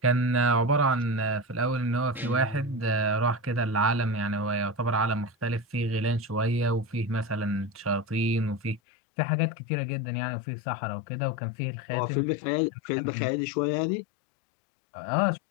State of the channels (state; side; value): drops out; right; at 8.8 s